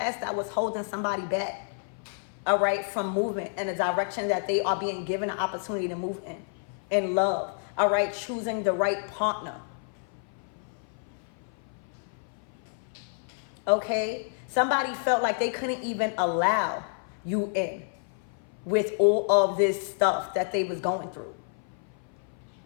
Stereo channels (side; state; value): right; silent; 56 dB below the other